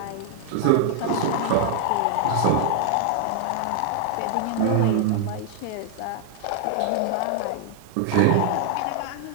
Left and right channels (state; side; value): different; both; correlation 0.00